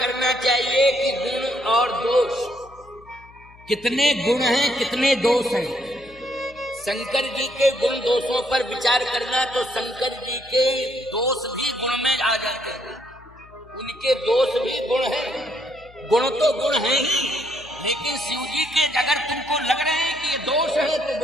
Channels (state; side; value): noise; left; hum, 24 dB below the sound